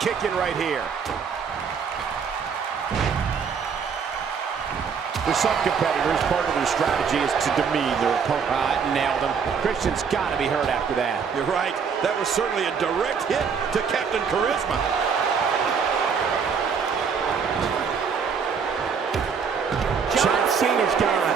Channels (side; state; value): left; quieter; 6.3 dB